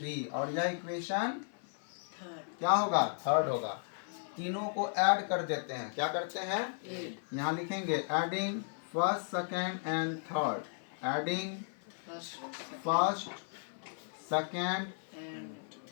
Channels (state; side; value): silent; right; 54 dB below the other